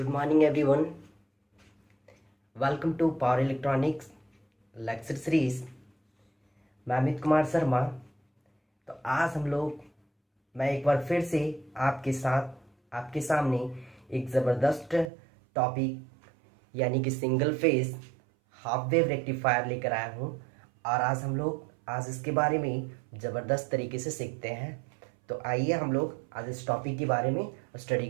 morning, everyone. Welcome to Power Electronics Lecture Series. मैं अमित कुमार शर्मा। तो आज मैं एक बार फिर से आपके सामने एक ज़बरदस्त टॉपिक यानी कि single phase half wave rectifier लेकर आया हूँ। और आज इसके बारे में ज़बरदस्त तरीके से सीखते हैं। तो आइए हम लोग आज इस टॉपिक के बारे में स्टडी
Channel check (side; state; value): left; drops out; at 15.1 s